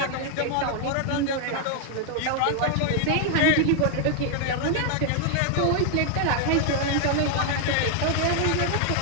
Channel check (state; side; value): different; both; correlation 0.00